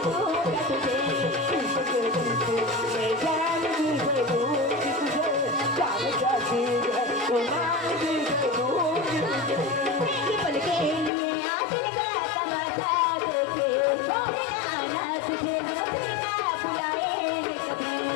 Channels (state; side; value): drops out; right; at 11.1 s